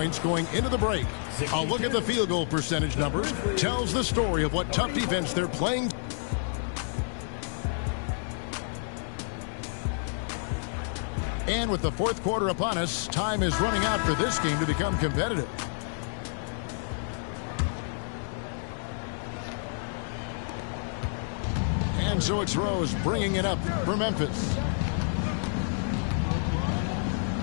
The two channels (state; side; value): silent; right; digital silence